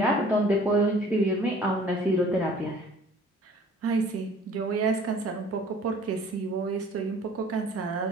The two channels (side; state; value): both; normal; correlation 0.51